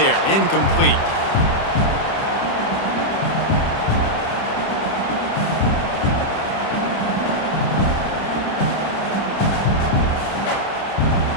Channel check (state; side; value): late; right; 30 ms